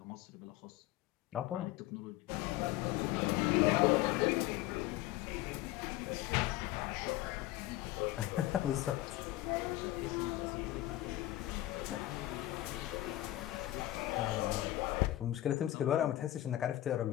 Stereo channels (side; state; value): right; quieter; 15.5 dB